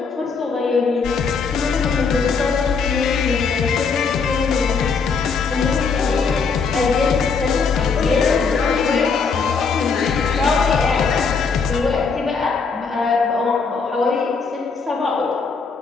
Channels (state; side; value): quieter; right; 5.2 dB